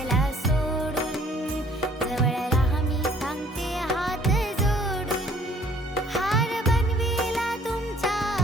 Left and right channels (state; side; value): normal; both; correlation 0.58